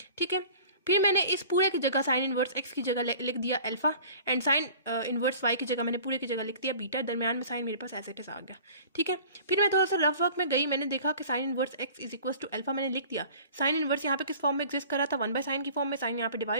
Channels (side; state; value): both; inverted; correlation -0.45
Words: ठीक है। फिर मैंने इस पूरे की जगह साइन इनवर्स एक्स की जगह लिख दिया alpha, and sine inverse y की जगह मैंने पूरे की जगह लिख दिया बीटा, दरमियान में साइन मेरे पास एज इट इज आ गया, ठीक है। फिर मैं थोड़ा सा रफ वर्क में गई, मैंने देखा कि sine inverse x is equal to alpha मैंने लिख दिया। साइन इनवर्स यहाँ पे किस फॉर्म में एग्जिस्ट कर रहा था, 1/sin की फॉर्म में, साइन यहाँ पे